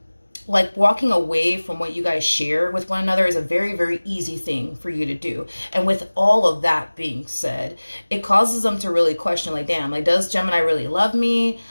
like walking away from what you guys share with one another is a very, very easy thing for you to do. And with all of that being said, it causes them to really question, like, damn, like, does Gemini really love me?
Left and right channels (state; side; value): inverted; both; correlation -1.00